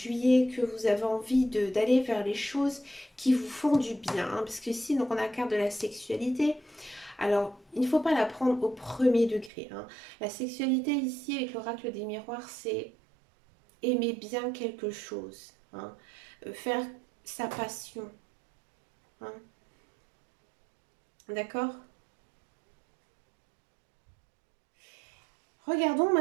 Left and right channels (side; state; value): left; drops out; at 9.5 s